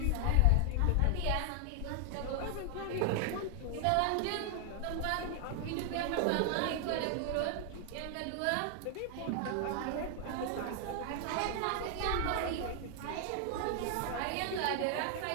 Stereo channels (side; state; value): both; different; correlation 0.00